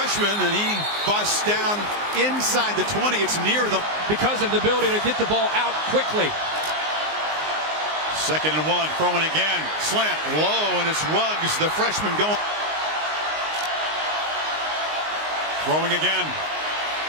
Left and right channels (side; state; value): left; late; 19 ms